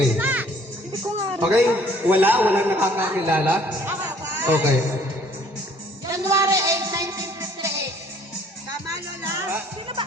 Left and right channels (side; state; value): both; normal; correlation 0.58